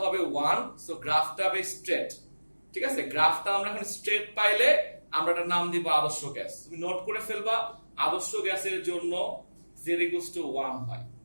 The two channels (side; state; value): both; inverted; correlation -1.00